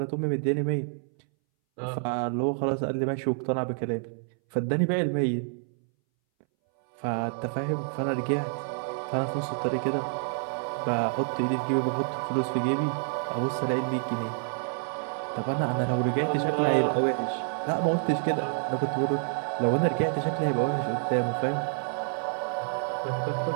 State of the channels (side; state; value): left; silent; 59 dB below the other